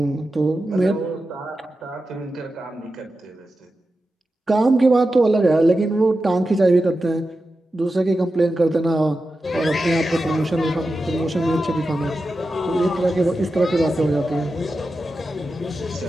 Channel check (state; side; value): normal; both; correlation 0.91